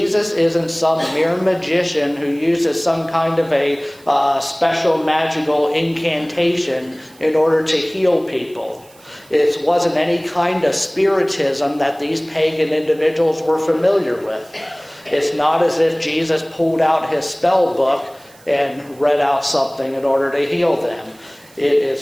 isn't some mere magician who uses some kind of a special magical incantation in order to heal people. It wasn't any kind of spiritism that these pagan individuals were familiar with. It's not as if Jesus pulled out his spell book and read out something in order to heal them. It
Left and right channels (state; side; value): noise; right; hiss, 27 dB below the sound